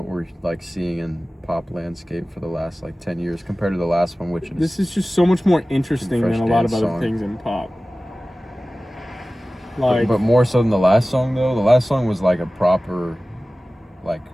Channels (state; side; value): normal; both; correlation 0.97